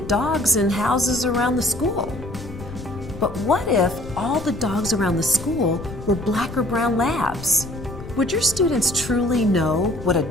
dogs in houses around the school. But what if all the dogs around the school were black or brown labs? Would your students truly know what a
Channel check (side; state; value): left; noise; rumble, 12 dB below the sound